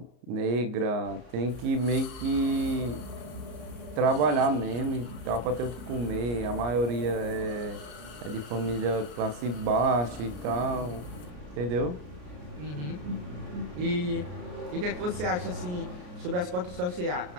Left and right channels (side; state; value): left; late; 33 ms